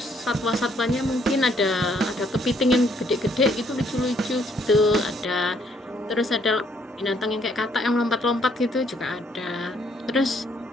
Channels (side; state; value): both; normal; correlation 0.68